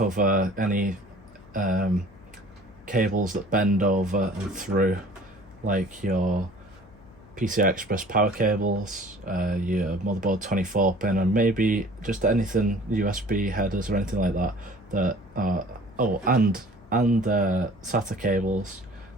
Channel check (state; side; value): noise; left; hum, 24 dB below the sound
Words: any cables that bend over and through, like your PCI Express power cables, your motherboard 24-pin, and maybe just anything USB headers or anything like that. And SATA cables